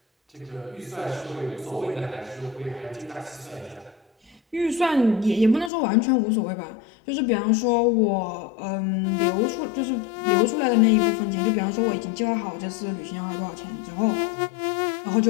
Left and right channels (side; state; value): right; drops out; at 5.7 s